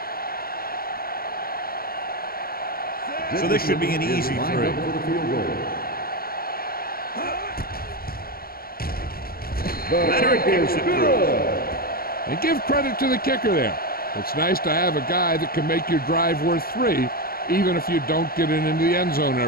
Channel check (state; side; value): late; right; 0.43 ms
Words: So this should be an easy three. Leonard kicks it through. And give credit to the kicker there. It's nice to have a guy that can make your drive worth 3, even if you don't get it into the end zone